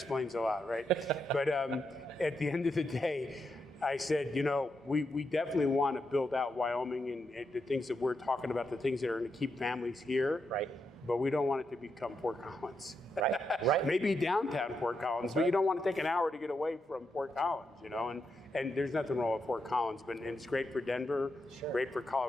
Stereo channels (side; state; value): both; normal; correlation 0.83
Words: a lot, right? But at the end of the day, I said, we definitely want to build out Wyoming and the things that we're talking about, the things that are going to keep families here. Right. But we don't want it to become Fort Collins. Right. Maybe downtown Fort Collins, but you don't want to take an hour to get away from Fort Collins, and there's nothing wrong with Fort Collins, but it's great for Denver, sure. Great for